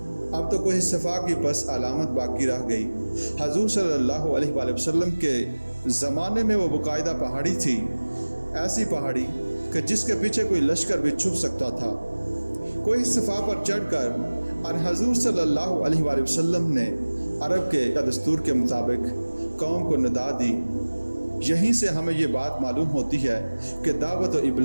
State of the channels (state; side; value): inverted; both; correlation -1.00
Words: अब तो कोहे सफ़ा की बस अलामत बाकी रह गई। हजूर सल्लल्लाहु अलैहि वसल्लम के ज़माने में वो बाकायदा पहाड़ी थी, ऐसी पहाड़ी कि जिसके पीछे कोई लश्कर भी छुप सकता था। कोहे सफ़ा पर चढ़कर और हजूर सल्लल्लाहु अलैहि वसल्लम ने अरब के दस्तूर के मुताबिक कौम को निदा दी। यहीं से हमें ये बात मालूम होती है कि दावत और